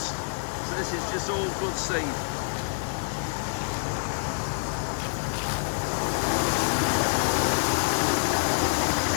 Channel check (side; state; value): right; silent; 60 dB below the other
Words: So this is just all good seed.